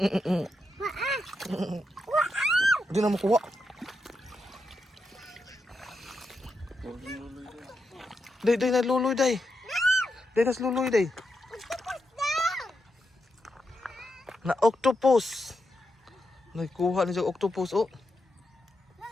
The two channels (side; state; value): both; normal; correlation 0.85